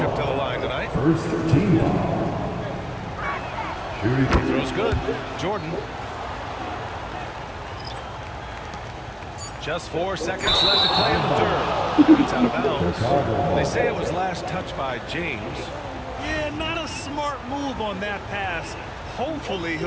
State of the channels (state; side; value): identical; both; correlation 1.00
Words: to the line tonight. First team foul. Shooting. Throws good. Jordan. Just 4 seconds left to play in the third. It's out of bounds. They say it was last touched by James. Yeah, not a smart move on that pass. Hopefully